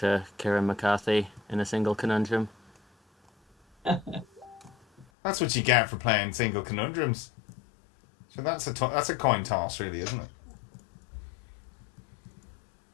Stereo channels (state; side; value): drops out; right; at 5.1 s